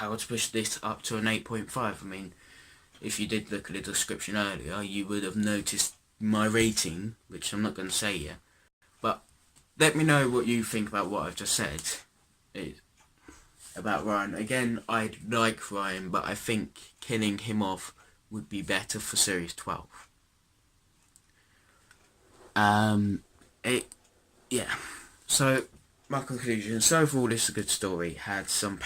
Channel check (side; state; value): both; identical; correlation 1.00